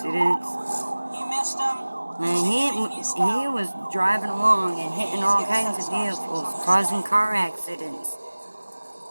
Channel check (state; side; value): inverted; both; correlation -1.00